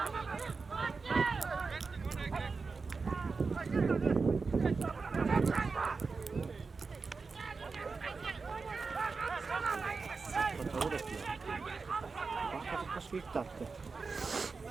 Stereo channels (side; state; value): left; quieter; 4.5 dB